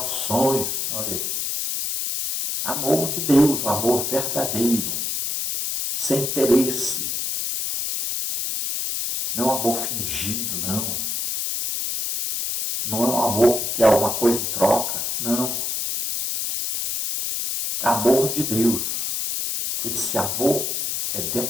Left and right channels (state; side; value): noise; left; hiss, 1 dB below the sound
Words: olha aí. Amor de Deus, amor verdadeiro, sem interesse. Não é um amor fingido, não. Não é um amor que quer alguma coisa em troca, não. Amor de Deus. Esse amor é